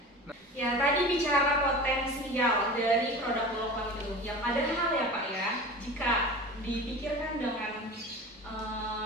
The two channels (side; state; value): both; normal; correlation 0.35